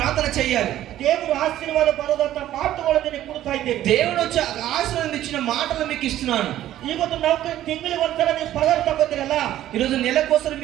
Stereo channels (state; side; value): quieter; left; 13.0 dB